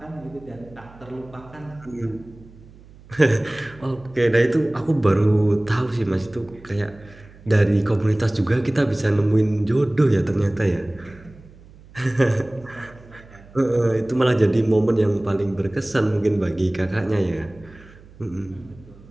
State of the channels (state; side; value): noise; right; hum, 23 dB below the sound